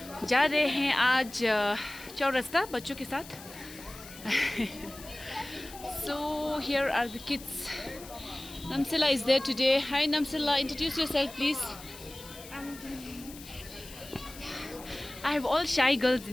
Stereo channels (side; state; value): left; noise; hiss, 16 dB below the sound